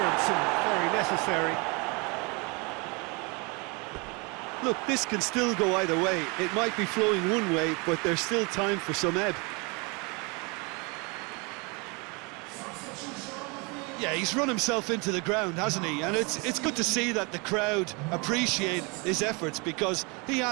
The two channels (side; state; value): left; quieter; 29.6 dB